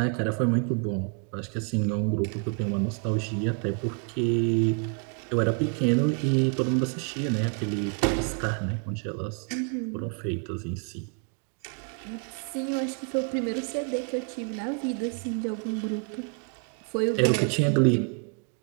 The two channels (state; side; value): quieter; left; 39.9 dB